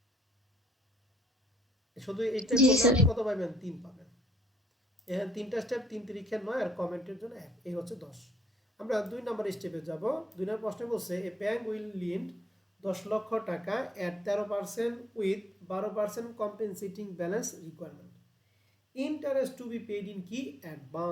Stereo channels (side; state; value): both; normal; correlation 0.66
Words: শুধু এইটা জি, করলে স্যার। আপনি কত পাবেন? 3 পাবেন। এখানে 3টা স্টেপ 3 তিরিখে 9 আর কমেন্টের জন্য 1, এই হচ্ছে 10। আমরা 2 নম্বর স্টেপে যাব। 2 নম্বর প্রশ্নে বলছে এ ব্যাংক উইল লিন্ড 10 লক্ষ টাকা এট 13% with 12% compensating balance requirement. Interest to be paid in কি